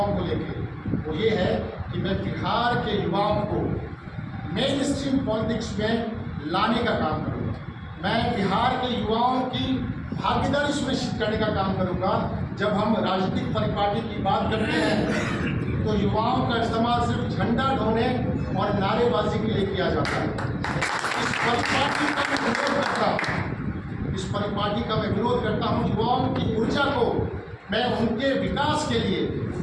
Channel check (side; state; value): both; identical; correlation 1.00